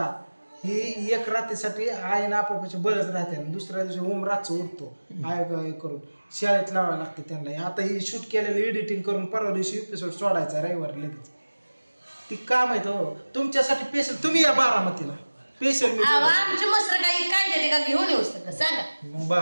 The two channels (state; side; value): inverted; both; correlation -1.00